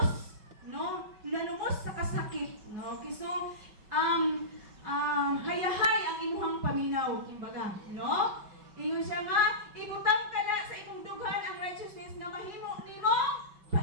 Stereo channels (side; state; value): left; late; 5.2 ms